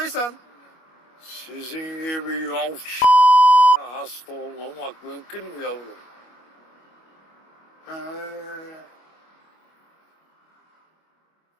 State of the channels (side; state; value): right; late; 25 ms